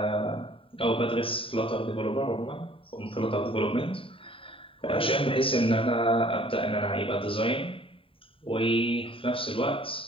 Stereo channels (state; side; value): late; right; 0.26 ms